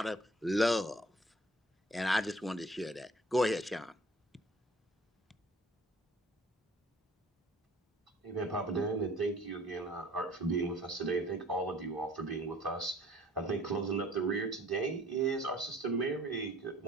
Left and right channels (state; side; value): normal; both; correlation 0.52